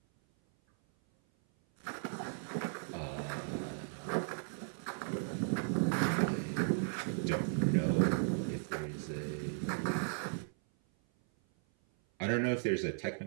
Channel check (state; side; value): silent; left; 54 dB below the other